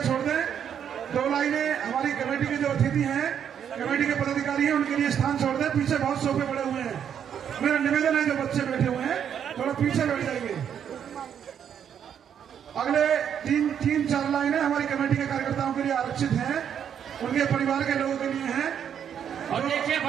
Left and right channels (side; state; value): left; quieter; 8.6 dB